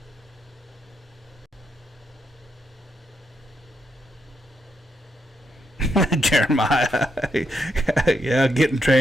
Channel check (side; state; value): both; normal; correlation 0.80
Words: Jeremiah, yeah, getting